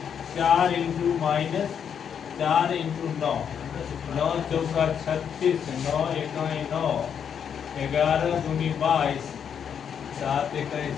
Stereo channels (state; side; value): quieter; right; 7.8 dB